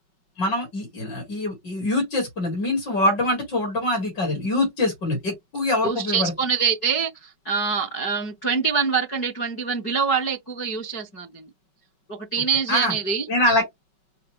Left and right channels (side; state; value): right; late; 5.3 ms